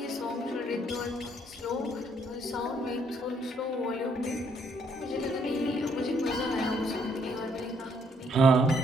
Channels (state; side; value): normal; both; correlation 0.69